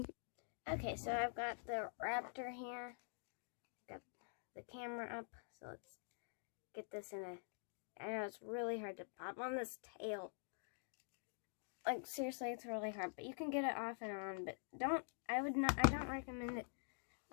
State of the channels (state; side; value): silent; right; digital silence